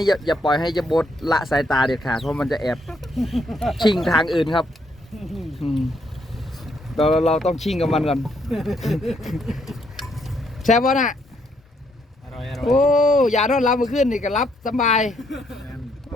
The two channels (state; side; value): normal; both; correlation 0.73